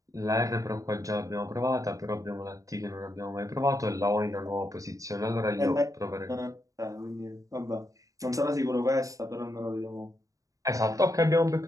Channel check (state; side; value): late; left; 0.16 ms